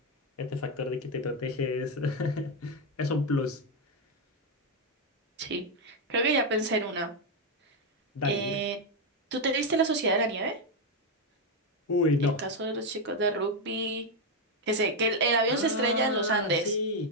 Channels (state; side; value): normal; both; correlation 0.03